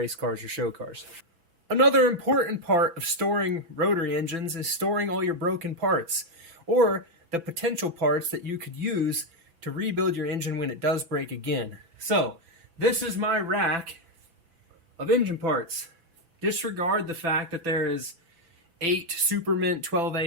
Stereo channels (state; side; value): late; left; 6.0 ms